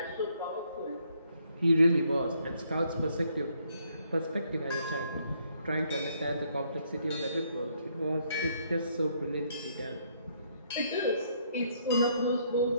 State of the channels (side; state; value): both; inverted; correlation -0.70